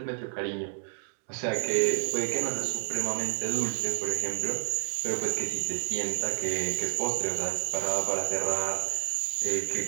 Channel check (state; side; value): silent; left; digital silence